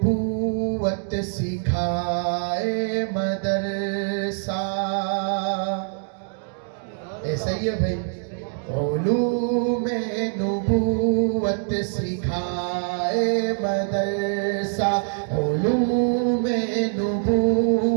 سکھائے مدرسہ. ایسا ہی ہے بھائی. علوم نبوت سکھائے مدرسہ, علوم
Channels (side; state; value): left; silent; digital silence